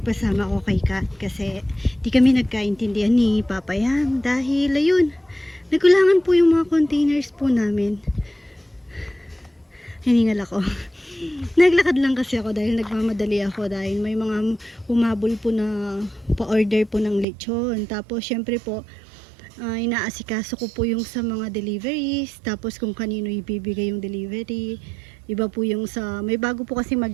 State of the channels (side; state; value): left; drops out; at 17.2 s